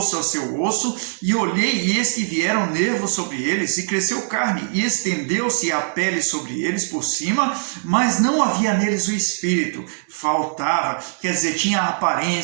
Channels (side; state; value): left; silent; digital silence